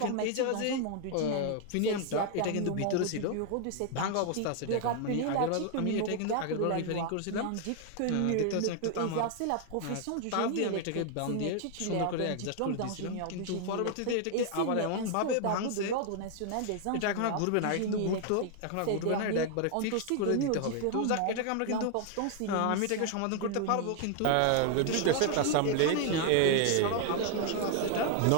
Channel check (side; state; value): both; different; correlation 0.00